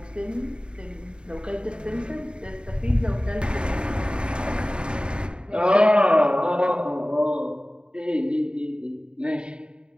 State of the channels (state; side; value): late; left; 0.052 ms